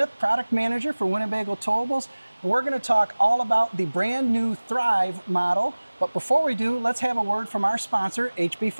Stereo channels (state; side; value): inverted; both; correlation -1.00